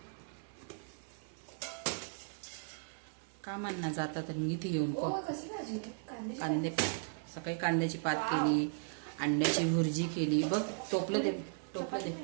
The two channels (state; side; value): silent; left; 53 dB below the other